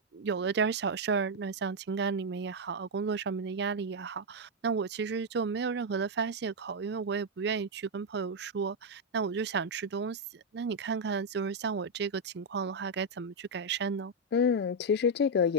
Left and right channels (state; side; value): normal; both; correlation 0.00